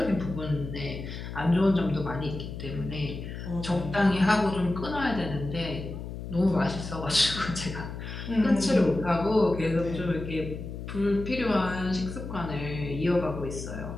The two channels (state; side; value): noise; left; hum, 8 dB below the sound